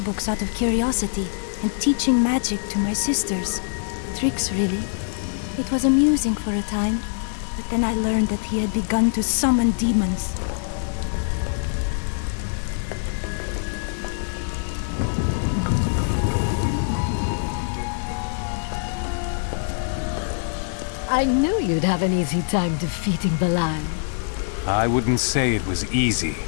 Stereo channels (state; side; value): silent; right; 60 dB below the other